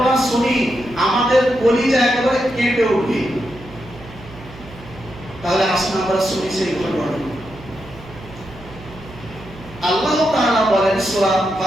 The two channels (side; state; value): right; noise; hum, 18 dB below the sound